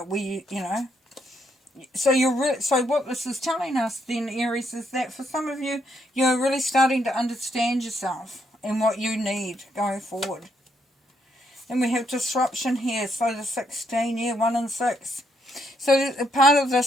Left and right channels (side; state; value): both; normal; correlation 0.75